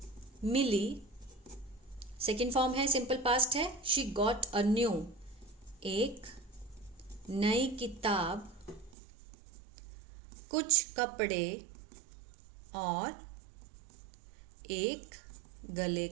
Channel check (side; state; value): left; drops out; at 9.0 s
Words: मिली, सेकेंड फॉर्म है, सिंपल पास्ट है, शी गॉट अ न्यू, एक नई किताब, कुछ कपड़े और एक गले